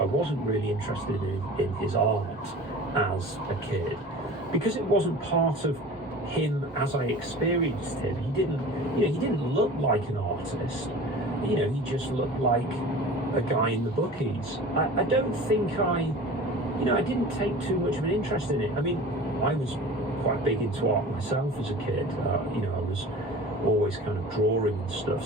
I wasn't really interested in his art as a kid, because it wasn't part of him as I experienced him. He didn't look like an artist. He just looked like a guy in the bookies. I don't think I didn't take too much of an interest in it. I mean, I was quite big into art myself as a kid. I was always kind of drawing and stuff.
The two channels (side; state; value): both; normal; correlation 0.39